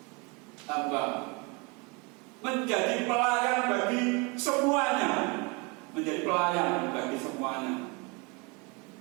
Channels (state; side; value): quieter; left; 28.3 dB